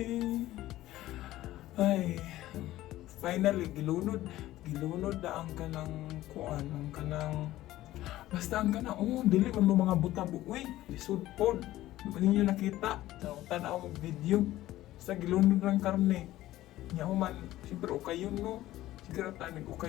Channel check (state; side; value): quieter; right; 15.4 dB